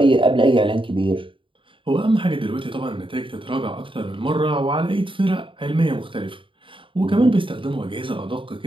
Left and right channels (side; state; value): left; late; 0.25 ms